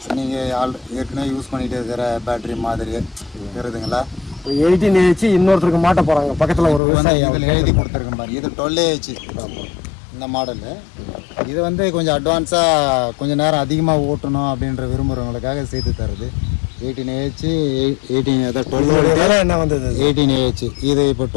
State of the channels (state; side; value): drops out; right; at 6.8 s